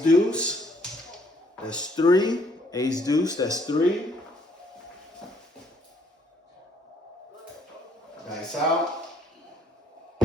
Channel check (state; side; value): normal; both; correlation 0.65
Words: deuce. That's 3. Ace deuce, that's 3. Dice out.